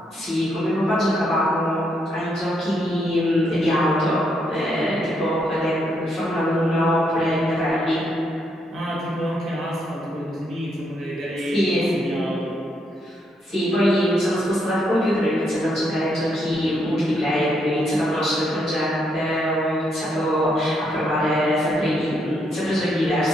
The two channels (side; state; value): both; normal; correlation 0.76